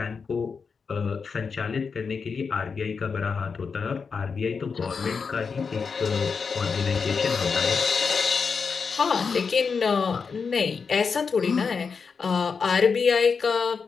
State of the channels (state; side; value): quieter; right; 5.4 dB